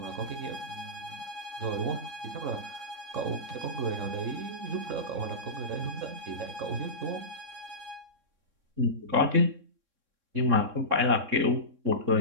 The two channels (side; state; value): left; late; 3.6 ms